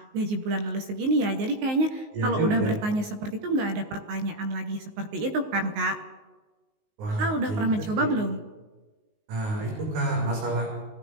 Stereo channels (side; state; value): left; late; 19 ms